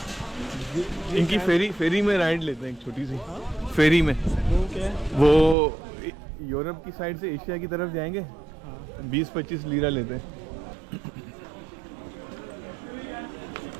इनकी फेरी में राइड लेते हैं, एक छोटी सी फेरी में। वो क्या है? वो यूरोप की साइड से एशिया की तरफ जाएंगे। 20-25 लीरा लेते हैं।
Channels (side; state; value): left; drops out; at 5.6 s